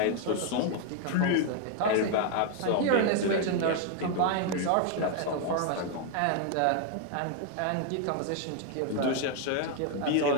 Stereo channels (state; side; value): different; both; correlation 0.01